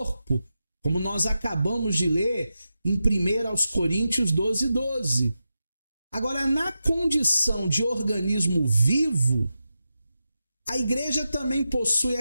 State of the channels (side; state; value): both; inverted; correlation -0.90